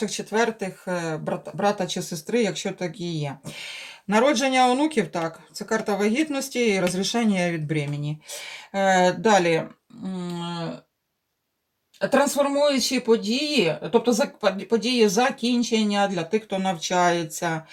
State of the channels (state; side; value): identical; both; correlation 1.00